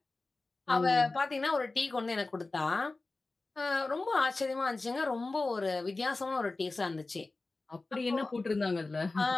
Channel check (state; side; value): quieter; right; 3.4 dB